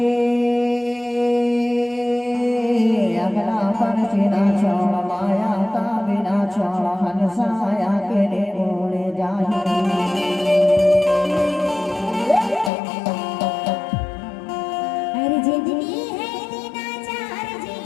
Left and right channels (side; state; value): right; drops out; at 12.7 s